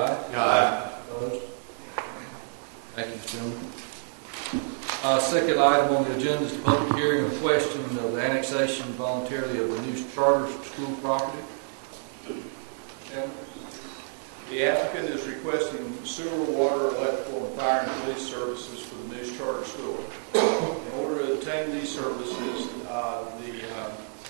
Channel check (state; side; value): silent; left; digital silence